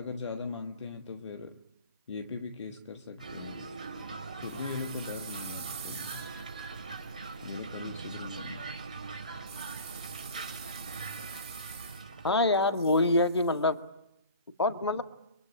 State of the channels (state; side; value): inverted; both; correlation -0.40